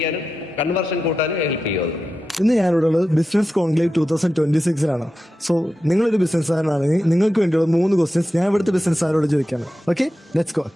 കൺവേർഷൻ കൂട്ടാനും ഹെൽപ്പ് ചെയ്യും അത്. ഇന്ന് ഞാനിവിടെ ഉള്ളത് ബിസിനസ് കോൺക്ലേവ് 2026 സോ നിങ്ങളൊരു ബിസിനസ്സുകാരനാണെങ്കിൽ നിങ്ങൾക്ക് വേണ്ടിയുള്ള 3 ക്വസ്റ്റ്യൻസ് ഞാൻ ഇവിടുത്തെ ബിസിനസ്സുകാരോട് ചോദിക്കാണ്. Okay, let's go.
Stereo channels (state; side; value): normal; both; correlation 0.91